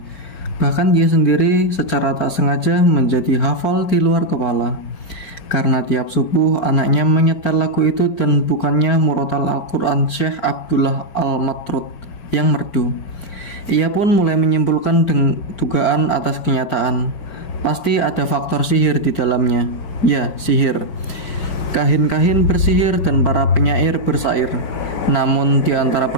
Bahkan dia sendiri secara tak sengaja menjadi hafal di luar kepala. Karena tiap subuh anaknya menyetel lagu itu dan bukannya murotal Al-Quran Syekh Abdullah Al-Matrud yang merdu. Ia pun mulai menyimpulkan dugaan atas kenyataan. Pasti ada faktor sihir di dalamnya. Ya, sihir. Kahin-kahin bersihir dan para penyair bersair. Namun di antara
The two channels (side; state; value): right; late; 4.9 ms